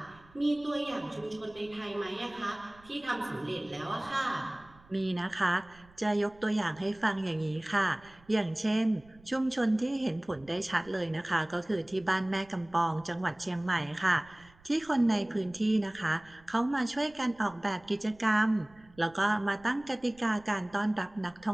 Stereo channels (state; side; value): noise; right; rumble, 26 dB below the sound